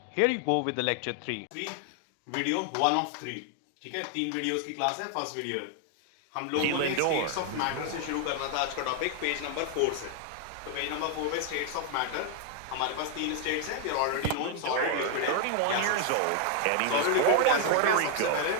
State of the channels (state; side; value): different; both; correlation 0.00